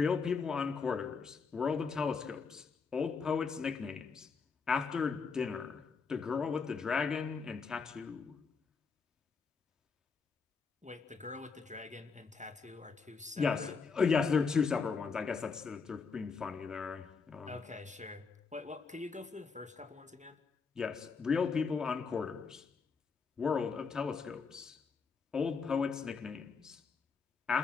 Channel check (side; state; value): right; quieter; 5.2 dB